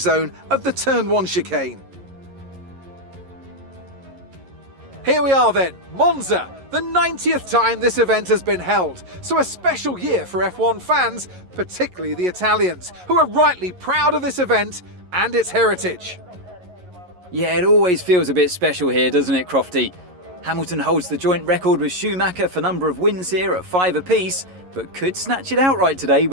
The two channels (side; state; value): left; late; 11 ms